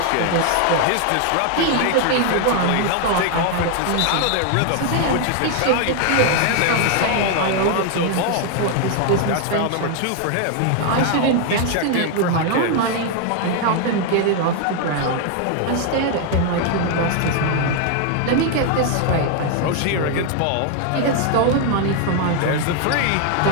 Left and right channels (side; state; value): both; different; correlation 0.00